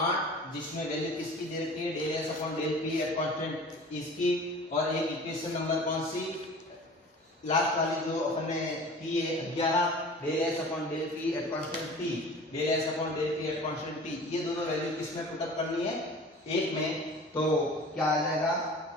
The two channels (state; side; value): normal; both; correlation 0.42